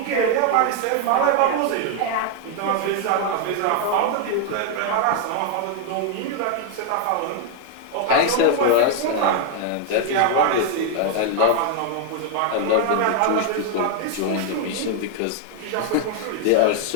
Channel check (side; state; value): both; different; correlation 0.00